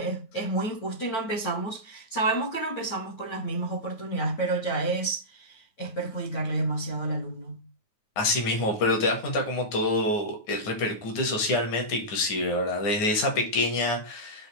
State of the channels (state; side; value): late; right; 9.5 ms